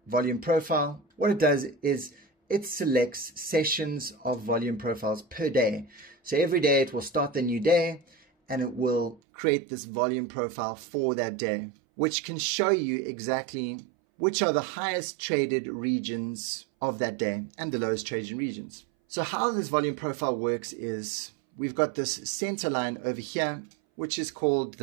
volume profile, what it does is it selects sessions of volume profiles per day. So every day it will start the new day and it will create this volume profile for that day, which can show you exactly which are the highest traded regions of that day and the lowest traded regions. So how this volume profile works is we've got this center line over here, which is called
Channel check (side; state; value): left; drops out; at 9.2 s